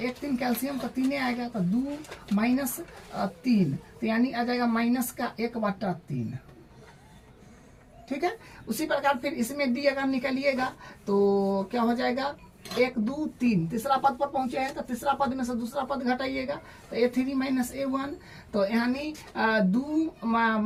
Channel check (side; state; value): both; identical; correlation 1.00